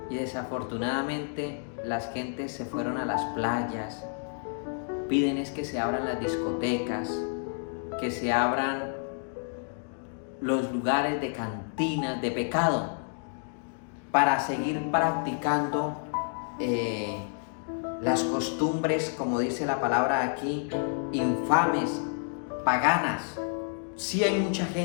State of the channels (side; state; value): right; silent; 58 dB below the other